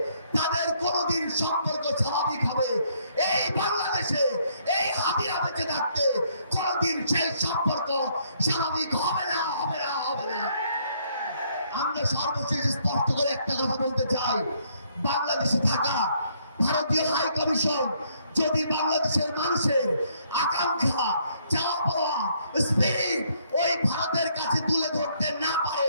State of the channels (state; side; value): inverted; both; correlation -0.68